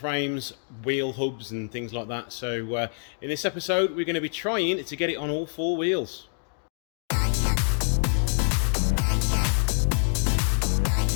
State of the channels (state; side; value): silent; right; 59 dB below the other